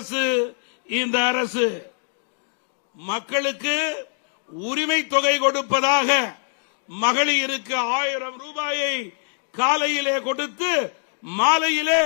இந்த அரசு. மக்களுக்கு உரிமை தொகை கொடுப்பதாக மகளிருக்கு 1000 ரூபாயை காலையிலே கொடுத்து மாலையிலே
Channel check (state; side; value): silent; right; 63 dB below the other